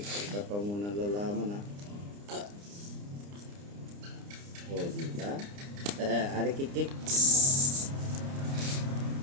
ka pa muna lalaman ha. O, di ba? Ari, kik.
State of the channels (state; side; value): late; left; 29 ms